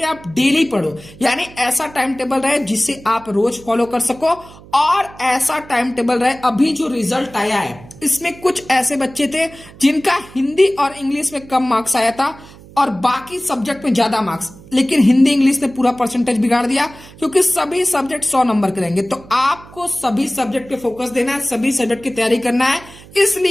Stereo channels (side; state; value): right; noise; hum, 21 dB below the sound